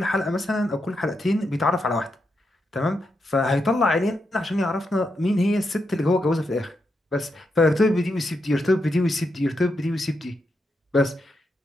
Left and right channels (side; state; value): both; normal; correlation 0.84